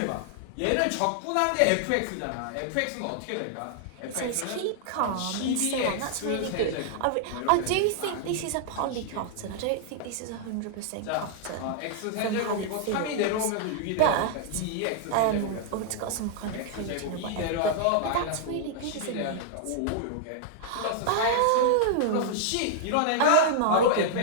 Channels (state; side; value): different; both; correlation -0.01